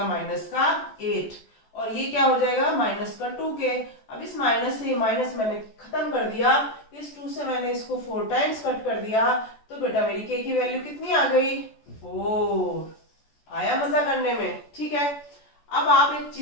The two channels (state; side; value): late; right; 14 ms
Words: -8 और ये क्या हो जाएगा, -2k। अब इस माइनस से माइनस मैंने खत्म कर दिया, इस 2 से मैंने इसको 4 टाइम्स कट कर दिया तो बेटा मेरी k की वैल्यू कितनी आ गई, 4। आया मजा करने में। ठीक है, अब आप एक